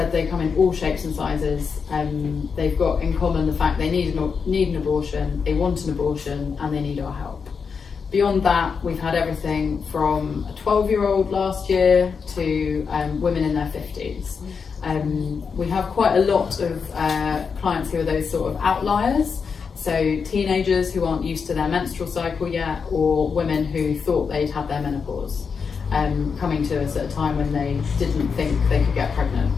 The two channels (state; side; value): quieter; right; 5.8 dB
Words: they come in all shapes and sizes. They've got in common the fact they need an abortion, they want an abortion, and they need our help. Beyond that, we've had everything from a 12-year-old last year to women in their 50s. We have quite a lot of clients who are those sort of outliers, so teenagers who aren't used to their menstrual cycle yet, or women who thought they'd had their menopause, coming to us at a time when they didn't think they could get